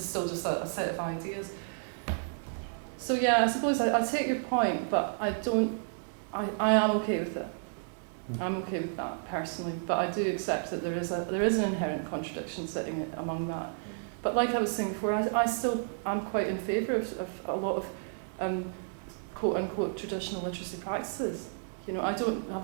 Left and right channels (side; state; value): left; silent; digital silence